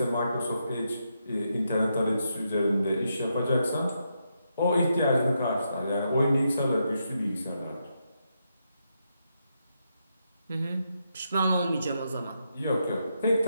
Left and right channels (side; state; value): both; inverted; correlation -0.82